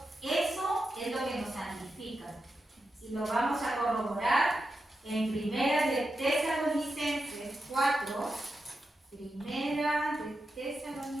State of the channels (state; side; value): normal; both; correlation 0.89